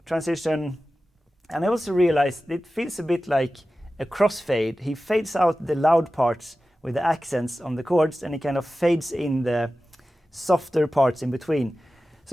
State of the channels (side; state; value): both; normal; correlation 0.95